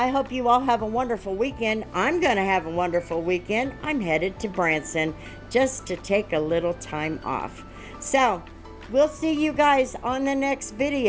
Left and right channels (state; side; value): identical; both; correlation 1.00